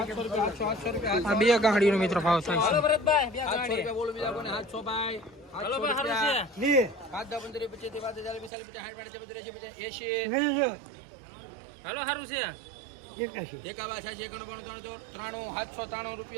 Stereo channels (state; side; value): drops out; left; at 8.5 s